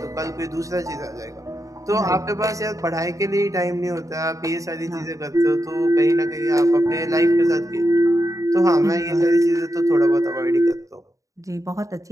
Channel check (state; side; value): late; left; 0.16 ms